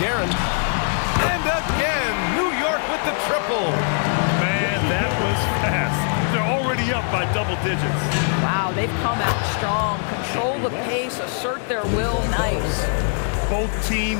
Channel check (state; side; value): silent; right; 57 dB below the other